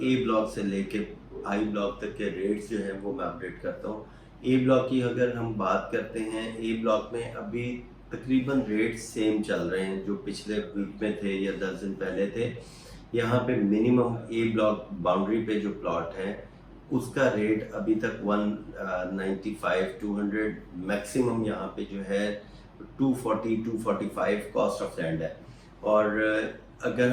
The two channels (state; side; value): identical; both; correlation 1.00